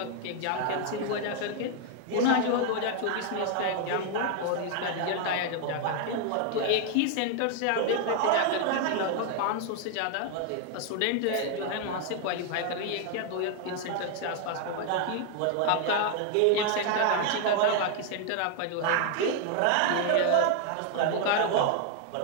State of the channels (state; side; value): different; both; correlation 0.01